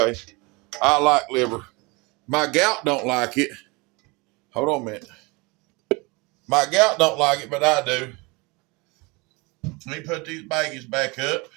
I like liver. My gout don't like it. Hold on a minute. My gout don't like it, but I do. Let me put these baggies back up.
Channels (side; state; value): left; quieter; 26.6 dB